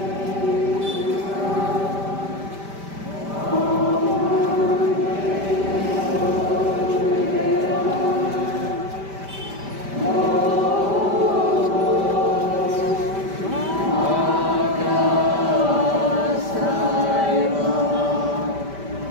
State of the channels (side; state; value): left; late; 5.1 ms